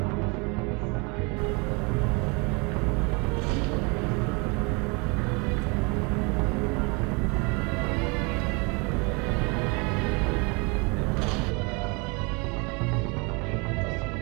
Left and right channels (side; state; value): left; quieter; 30.3 dB